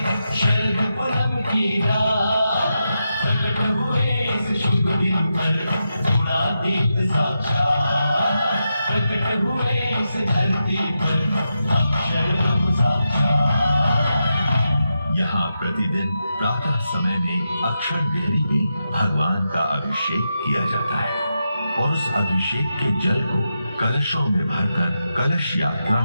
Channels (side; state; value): both; inverted; correlation -0.87